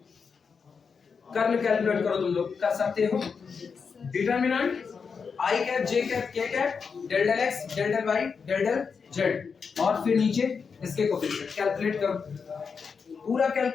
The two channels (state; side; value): quieter; right; 5.7 dB